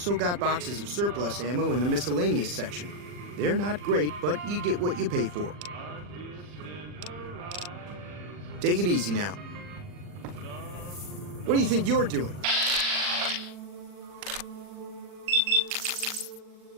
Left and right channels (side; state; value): left; late; 40 ms